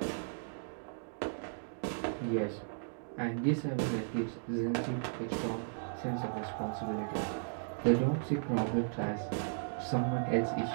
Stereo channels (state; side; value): silent; left; digital silence